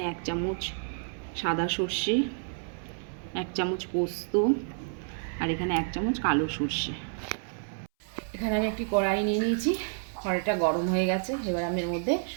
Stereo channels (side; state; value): left; silent; 58 dB below the other